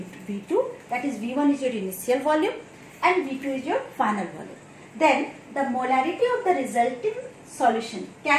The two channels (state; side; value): identical; both; correlation 1.00